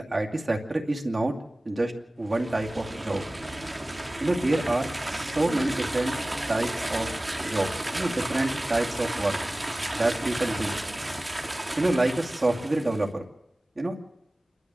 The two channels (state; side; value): normal; both; correlation 0.98